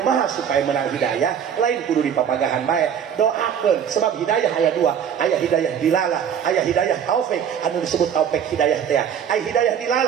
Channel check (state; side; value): quieter; left; 8.4 dB